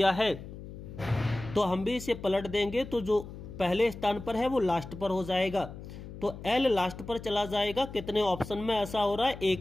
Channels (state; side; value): noise; left; hum, 13 dB below the sound